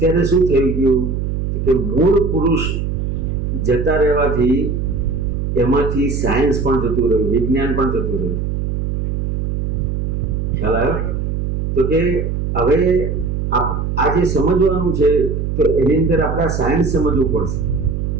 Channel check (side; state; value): right; noise; hum, 2 dB below the sound